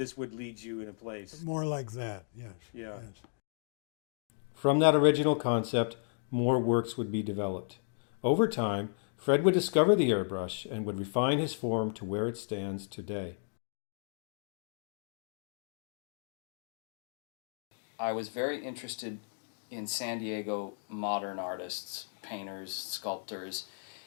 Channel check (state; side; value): silent; right; 55 dB below the other